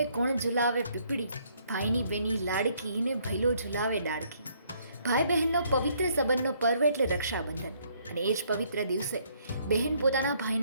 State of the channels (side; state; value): both; inverted; correlation -0.67